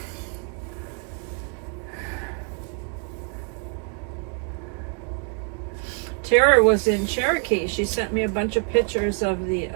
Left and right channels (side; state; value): left; quieter; 39.5 dB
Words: Tara was in Cherokee. She sent me a bunch of pictures of the